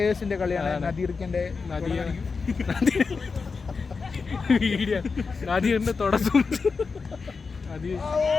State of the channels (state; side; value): quieter; right; 4.8 dB